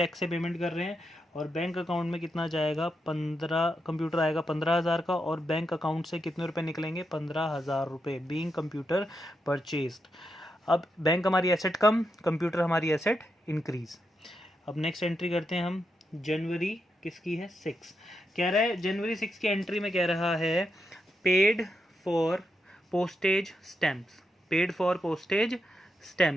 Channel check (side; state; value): both; normal; correlation 0.84